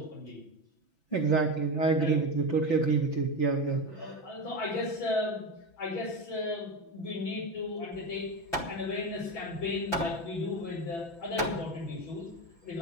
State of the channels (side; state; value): right; late; 6.0 ms